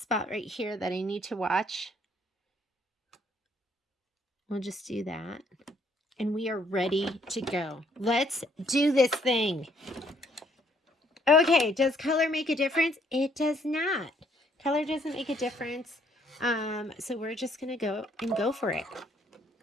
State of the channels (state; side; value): normal; both; correlation 0.67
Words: right here that I need to watch. We'll just do that. And we are ready to go. Let's do this thing. Okay, does color make a difference? It does not. Color doesn't make a difference. So we're just going to go for it.